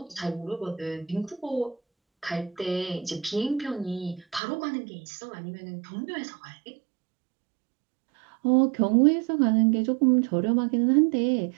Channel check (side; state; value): left; drops out; at 4.4 s